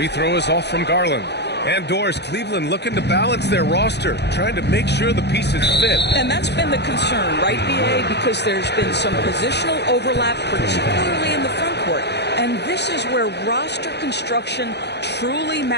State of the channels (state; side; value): late; right; 0.49 ms